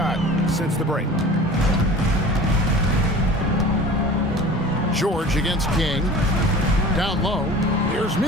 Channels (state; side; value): normal; both; correlation 0.41